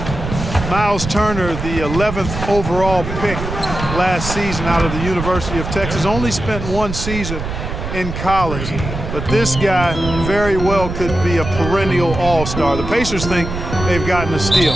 Miles Turner, the 11th overall pick last season out of the University of Texas, only spent one season in college. But this guy very well could be a perennial all-star. The Pacers think they've gotten a steal.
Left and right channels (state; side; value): noise; right; rumble, 6 dB below the sound